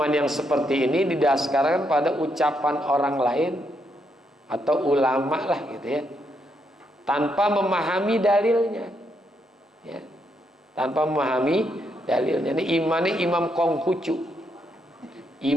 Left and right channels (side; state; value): both; normal; correlation 0.78